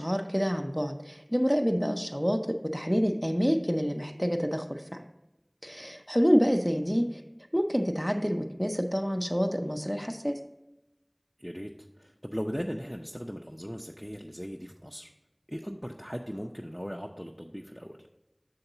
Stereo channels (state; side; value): identical; both; correlation 1.00